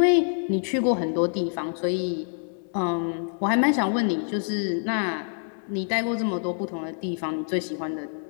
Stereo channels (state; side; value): silent; right; digital silence